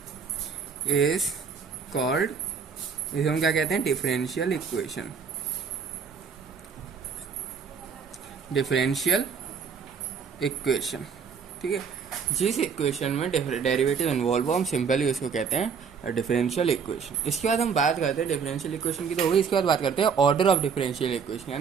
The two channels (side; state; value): left; quieter; 6.3 dB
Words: is called, इसे हम क्या कहते हैं, डिफरेंशियल इक्वेशन। ठीक है, जिस इक्वेशन में डेरिवेटिव इन्वॉल्व हो हम सिंपली उसको कहते हैं डिफरेंशियल इक्वेशन। इसके बाद हम बात करते हैं डिफरेंशियल इक्वेशन की तो होगी। इसके बाद बात करते हैं ऑर्डर ऑफ डिफरेंशियल इक्वेशन।